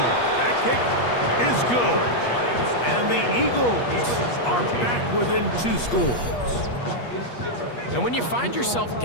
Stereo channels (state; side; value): late; right; 8.4 ms